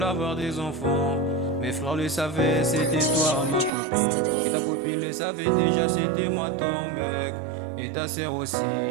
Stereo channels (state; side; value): drops out; left; at 3.7 s